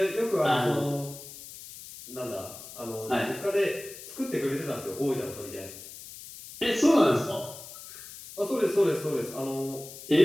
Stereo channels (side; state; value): left; noise; hiss, 14 dB below the sound